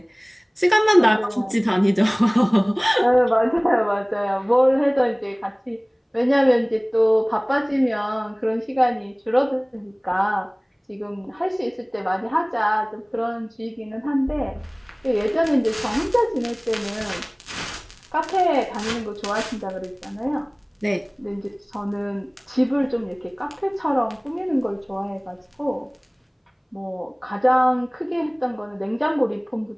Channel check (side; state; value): both; identical; correlation 1.00